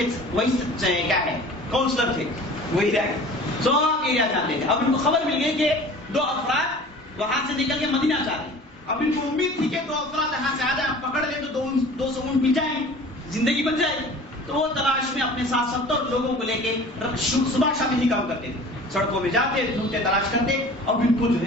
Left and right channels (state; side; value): normal; both; correlation 0.43